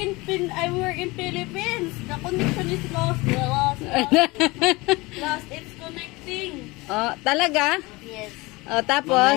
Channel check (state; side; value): quieter; right; 23.1 dB